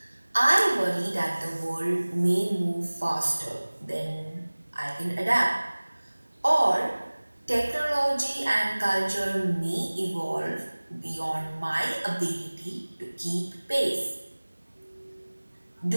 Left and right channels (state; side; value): inverted; both; correlation -1.00